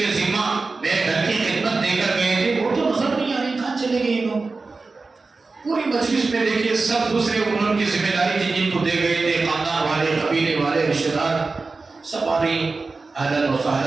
ذمہ میرے گھر کی خدمت دے کر گئے تھے وہ تو نظر نہیں آ رہے، کہاں چلے گئے لوگ. پوری مجلس میں دیکھیے سب دوسرے انہوں کی ذمہ داری تھی جن کو دے گئے تھے، خاندان والے، قبیلے والے، رشتہ دار، سب آ رہی اہلاً و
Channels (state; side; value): quieter; left; 3.9 dB